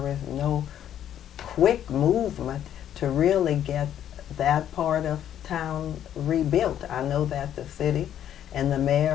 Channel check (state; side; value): quieter; right; 10.5 dB